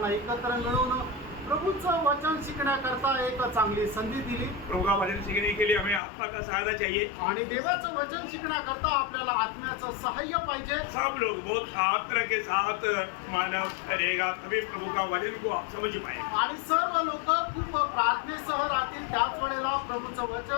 एकत्र मिळवून प्रभूचं वचन शिकण्याकरता एक चांगली संधी दिली। प्रभु का वचन सीखने के लिए हमें आत्मा का सहायता चाहिए आणि देवाचं वचन शिकण्याकरता आपल्याला आत्म्याचं सहाय्य पाहिजे। सब लोग बहुत आदर के साथ मानव रहेगा तभी प्रभु का वचन को आप समझ पाए आणि सर्व लोक खूप प्रार्थनेसह राहतील त्याच वेळेला प्रभूचं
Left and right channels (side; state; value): right; drops out; at 6.0 s